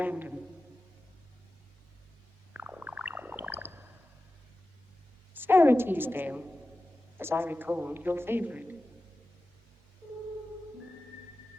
Sarah Teasdale, as I recall, your favorite.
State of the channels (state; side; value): normal; both; correlation 0.94